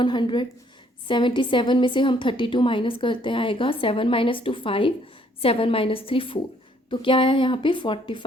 77 में से हम 32 माइनस करते हैं, आएगा 7 माइनस 2 5, 7 माइनस 3 4. तो क्या आया यहाँ पे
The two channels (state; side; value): normal; both; correlation 0.65